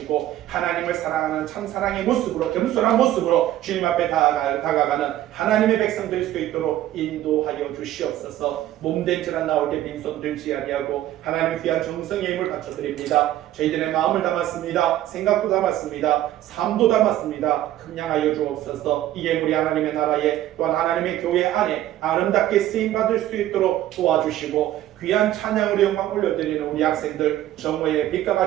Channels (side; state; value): left; quieter; 13.4 dB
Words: 하나님을 사랑하는 참사랑의 모습으로, 겸손한 모습으로 주님 앞에 다가가는 하나님의 백성 될 수 있도록 인도하여 주시옵소서. 몸된 자란 나올 때 빈손 들지 아니하고 하나님의 귀한 정성의 힘을 바쳐드립니다. 저희들의 마음을 담았습니다. 생각도 담았습니다. 삶도 담았습니다. 함양하여 주옵소서. 이 예물이 하나님의 나라에 또한 하나님의 교회 안에 아름답게 쓰임받을 수 있도록 도와주시고 귀한 찬양으로 영광 올려드리는 우리 학생들 정오의 빛과